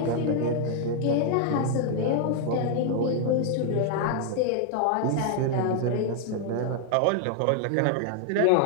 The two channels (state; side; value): different; both; correlation 0.00